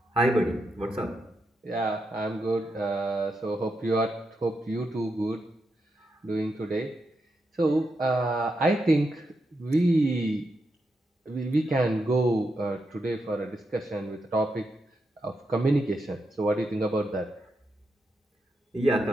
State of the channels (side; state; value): both; normal; correlation 0.84